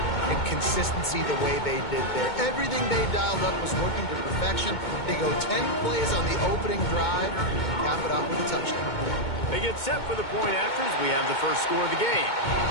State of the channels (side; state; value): right; late; 2.2 ms